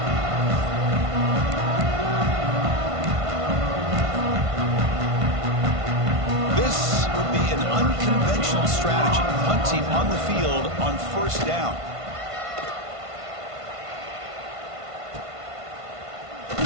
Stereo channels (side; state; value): left; late; 1.5 ms